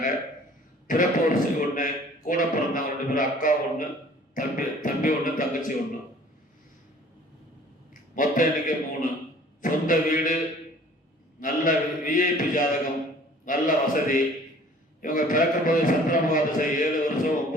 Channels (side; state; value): both; normal; correlation 0.51